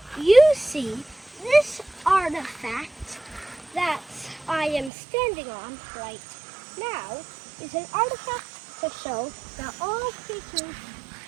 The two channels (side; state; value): left; drops out; at 4.9 s